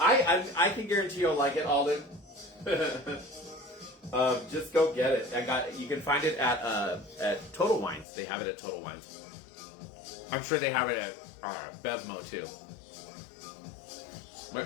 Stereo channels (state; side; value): drops out; right; at 8.1 s